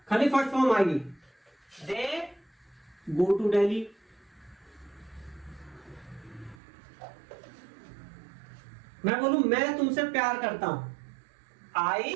खाली फर्स्ट फॉर्म आएगी, दे गो टू दिल्ली। मैं बोलूं मैं तुमसे प्यार करता हूं,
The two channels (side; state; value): left; drops out; at 6.6 s